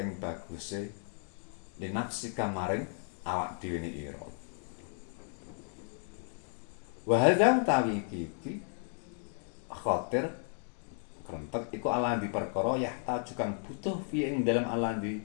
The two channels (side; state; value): right; silent; 55 dB below the other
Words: baguse li nafsi kamaring awak dhewe ne ira. Wa hadza tawi iki khatir krentek iku alandi perkara yahtaju kang butuh fi ing dalem alandi